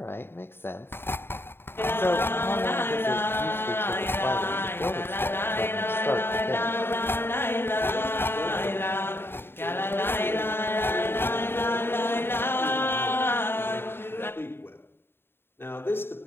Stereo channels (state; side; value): late; right; 0.11 ms